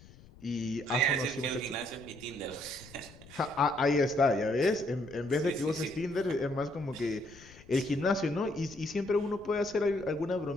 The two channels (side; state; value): left; noise; rumble, 21 dB below the sound